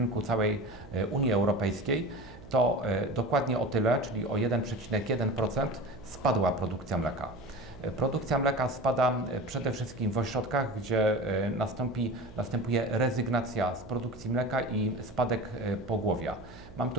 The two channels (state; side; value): noise; right; hum, 19 dB below the sound